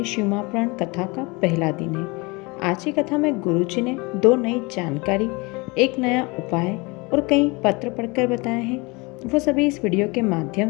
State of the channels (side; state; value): right; quieter; 26.5 dB